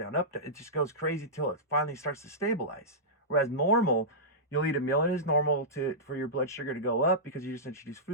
up. It just goes crazy till it finally starts to stabilize. Whereas normal, you'll eat a meal and it's normal for your blood sugar to go up because you just introduce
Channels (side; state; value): both; normal; correlation -0.15